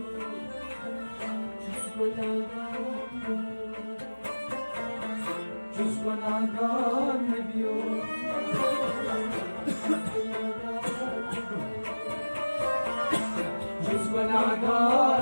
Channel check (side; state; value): both; inverted; correlation -1.00